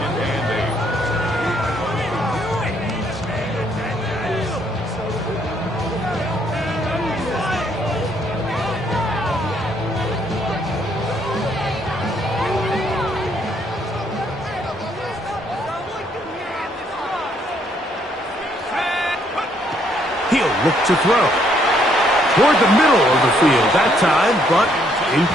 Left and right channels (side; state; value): both; normal; correlation 0.69